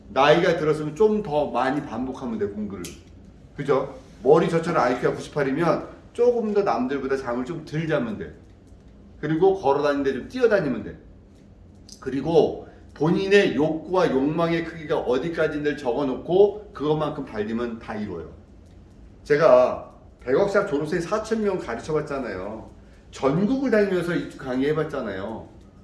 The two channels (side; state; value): both; identical; correlation 1.00